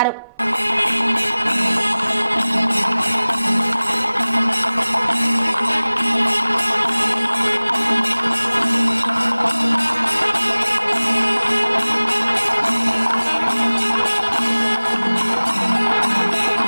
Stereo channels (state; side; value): inverted; both; correlation -0.99